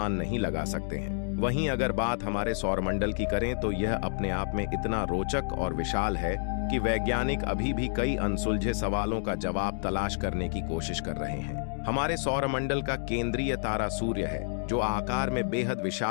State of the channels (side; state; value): right; silent; digital silence